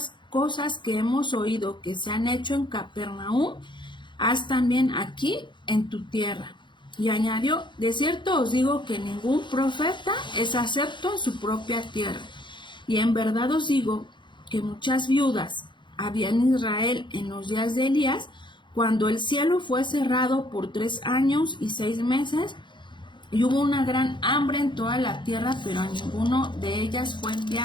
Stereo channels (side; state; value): right; late; 0.23 ms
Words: cosas que hemos oído que se han hecho en Capernaum, haz también aquí en tu tierra. Y añadió: de cierto os digo que ningún profeta es acepto en su propia tierra. Y en verdad os digo que muchas viudas había en Israel en los días de Elías, cuando el cielo fue cerrado por 3 años y 6 meses, y hubo una gran hambre en toda la tierra, pero a ninguno de ellas fue